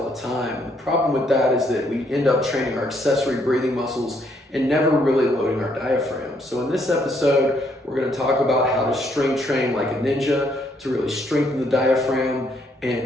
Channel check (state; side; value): normal; both; correlation 0.71